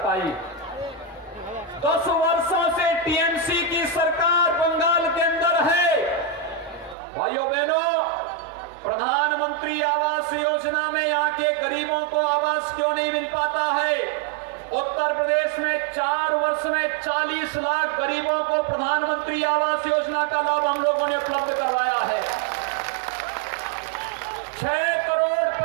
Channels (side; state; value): left; drops out; at 7.0 s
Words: 10 वर्षों से टीएमसी की सरकार बंगाल के अंदर है। भाइयों बहनों, प्रधानमंत्री आवास योजना में यहाँ के गरीबों को आवास क्यों नहीं मिल पाता है? उत्तर प्रदेश में 4 वर्ष में 40 लाख गरीबों को प्रधानमंत्री आवास योजना का लाभ हम लोगों ने उपलब्ध करवाया है। 6 करोड़